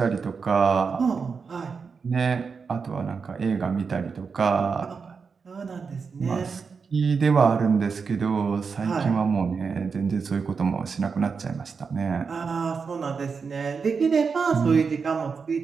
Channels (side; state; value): left; quieter; 5.4 dB